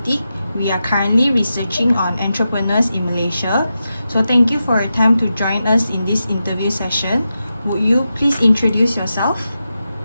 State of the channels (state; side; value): inverted; both; correlation -0.90